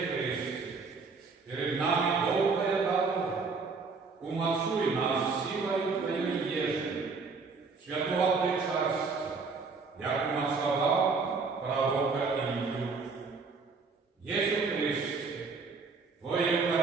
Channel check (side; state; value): left; quieter; 4.5 dB